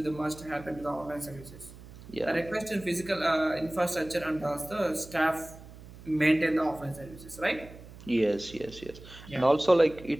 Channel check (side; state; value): right; noise; hum, 18 dB below the sound